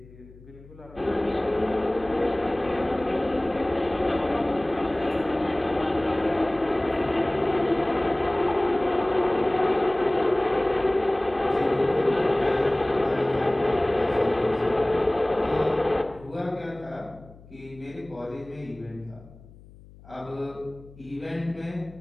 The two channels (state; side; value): noise; left; hum, 22 dB below the sound